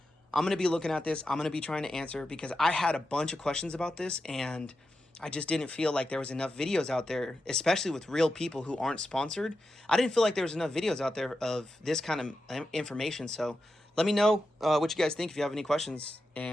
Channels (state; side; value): normal; both; correlation 0.89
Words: I'm going to be looking at this. I'm going to be trying to answer, because I had a bunch of questions about this, and I just didn't feel like there was enough videos out there, especially with real people who aren't sponsored. I didn't feel like there was enough videos out there of this kind of information. So let me know what you guys think if you have any questions,